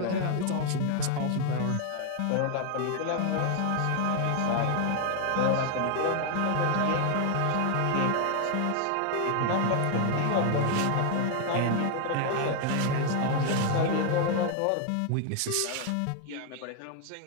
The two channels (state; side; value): different; both; correlation 0.00